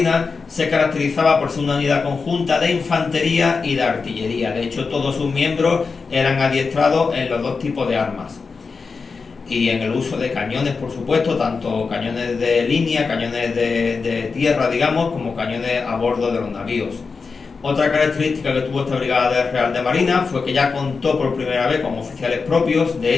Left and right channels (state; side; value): quieter; right; 4.8 dB